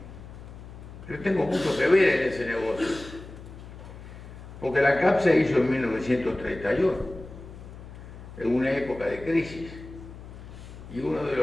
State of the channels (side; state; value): left; noise; hum, 15 dB below the sound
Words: Yo tengo mucho que ver en ese negocio. Porque la ANCAP se hizo en 1931, en una época de crisis. Y uno de